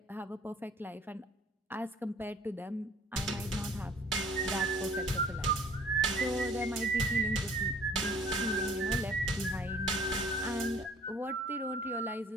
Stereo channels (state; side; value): normal; both; correlation 0.53